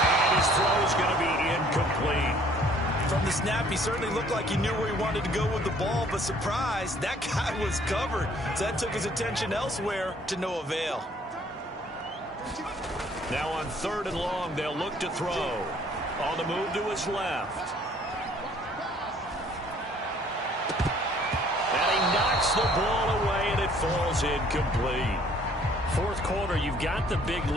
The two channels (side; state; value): both; normal; correlation 0.59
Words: his throw is going to be incomplete. From the snap, he certainly looked like he knew where he wanted to go with the ball, but surprise, that guy was covered. So that took his attention elsewhere to no avail. Now on 3rd and long, they'll look to throw. On the move to his left. Knocks the ball away, and it falls incomplete. 4th quarter, you've got the big